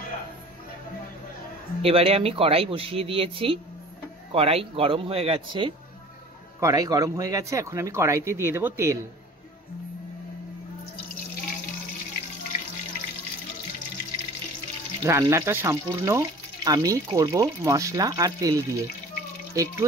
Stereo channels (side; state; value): both; normal; correlation 0.44